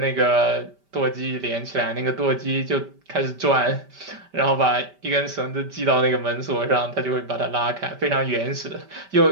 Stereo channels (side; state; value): left; late; 5.1 ms